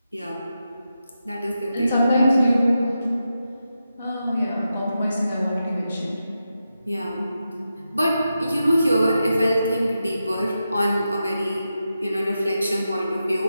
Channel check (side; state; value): both; inverted; correlation -0.88